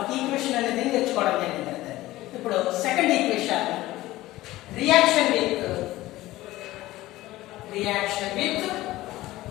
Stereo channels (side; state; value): right; quieter; 17.0 dB